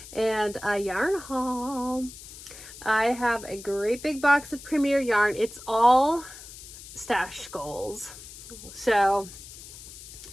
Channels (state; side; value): noise; left; hiss, 15 dB below the sound